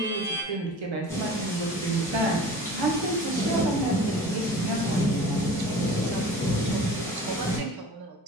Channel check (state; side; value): normal; both; correlation 0.41